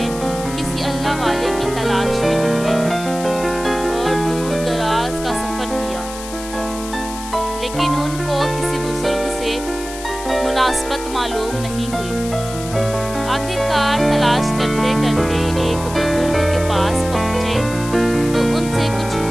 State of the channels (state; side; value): noise; left; hiss, 12 dB below the sound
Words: کسی اللہ والے کی تلاش میں نکلے اور دور دراز کا سفر کیا، لیکن ان کو کسی بزرگ سے مناسبت معلوم نہیں ہوئی۔ آخر کار تلاش کرتے کرتے ایک بزرگ کے پاس پہنچے تو ان سے کچھ